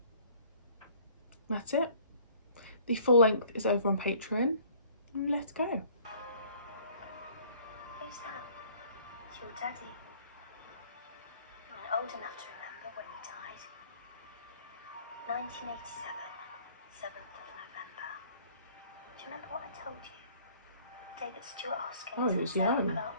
That's it. The full length is over on Patreon. Let's go. Who's that? It's your daddy. You weren't old enough to remember when he died. 1987, 7th of November. Do you remember what I told you? The day that Stuart Hoskins and Sarah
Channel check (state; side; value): inverted; both; correlation -0.55